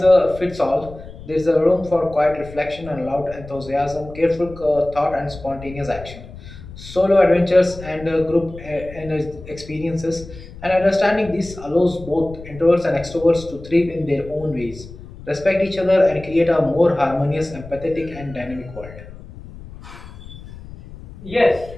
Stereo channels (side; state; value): left; noise; rumble, 16 dB below the sound